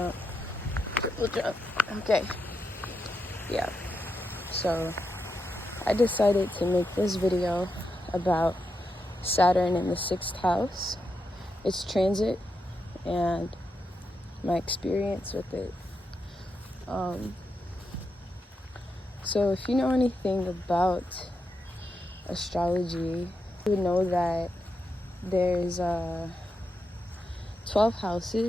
triple jump. Okay, yeah. So I decided to make this video about Saturn in the 6th house, its transit, and my experience with it. So if you know anything about astrology, you would know that there's 12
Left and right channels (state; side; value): normal; both; correlation 0.85